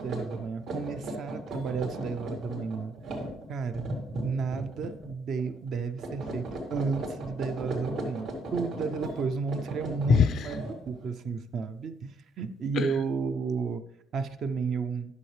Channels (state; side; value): normal; both; correlation 0.70